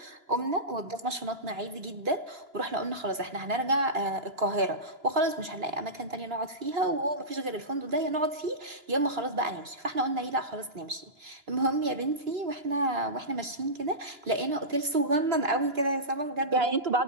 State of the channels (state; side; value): late; left; 2.9 ms